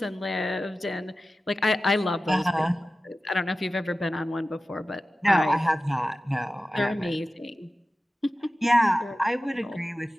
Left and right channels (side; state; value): both; normal; correlation 0.95